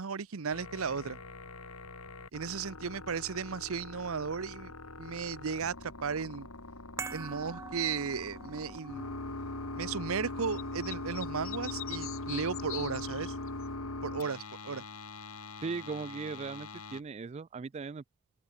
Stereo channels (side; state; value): left; quieter; 3.2 dB